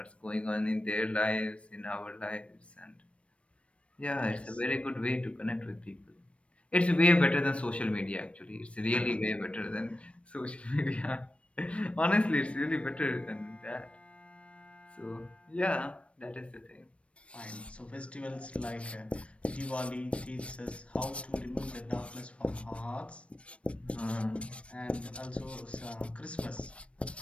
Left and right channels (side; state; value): right; late; 0.061 ms